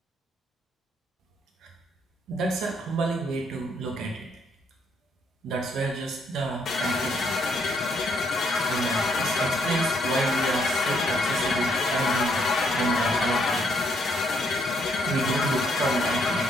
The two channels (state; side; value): normal; both; correlation 0.71